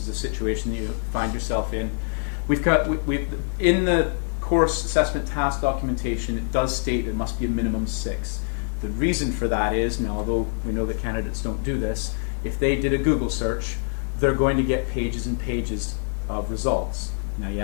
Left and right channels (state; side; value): silent; right; digital silence